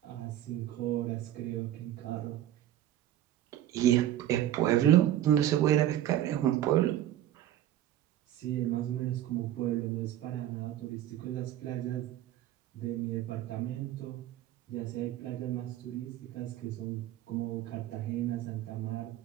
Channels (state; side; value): quieter; left; 12.4 dB